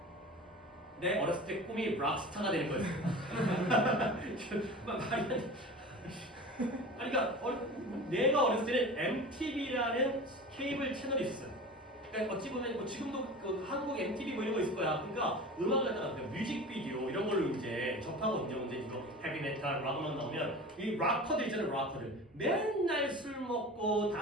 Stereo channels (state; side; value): normal; both; correlation 0.35